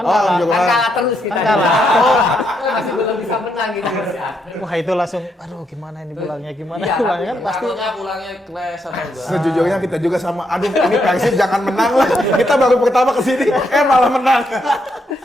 kalah. Kanjuruhan. Kan kalah terus kita. Kan kalah. Masih belum bisa menang gitu. Wah, itu langsung aduh gimana ini pulangnya gimana Iya, pulangnya kan pasti Pulangnya clash atau enggak? Sejujurnya kita juga sama, aduh ini Persib jangan menang lah. Kita baru pertama kesini, malah menang.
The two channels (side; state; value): both; normal; correlation 0.78